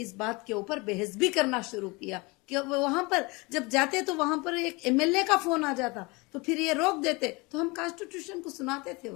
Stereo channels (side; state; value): right; quieter; 26.0 dB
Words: बात के ऊपर बहस भी करना शुरू किया कि वहां पर जब जाते तो वहां पर एक एमएलए का फोन आ जाता तो फिर ये रोक देते, तो हम कॉन्स्टिट्यूशन को सुनाते थे